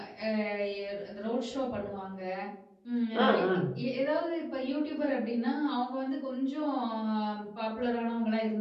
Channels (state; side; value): identical; both; correlation 1.00